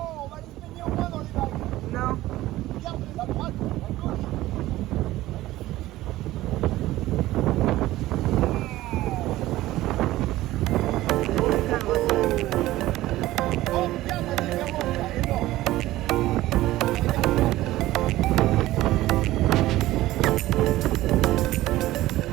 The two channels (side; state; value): left; quieter; 16.2 dB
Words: on va se baigner au moins dans les vagues. Non. Regarde, à droite, à gauche. Oh, regarde la différence, là, énorme.